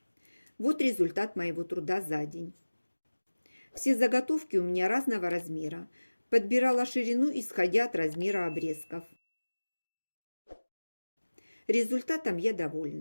Вот результат моего труда за день. Все заготовки у меня разного размера. Подбирала ширину, исходя от размера обрезков. Результатом я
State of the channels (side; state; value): both; inverted; correlation -1.00